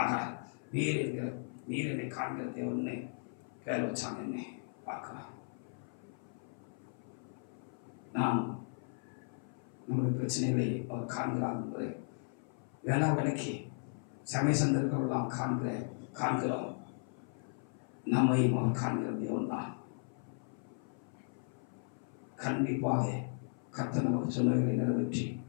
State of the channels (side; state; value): right; silent; 53 dB below the other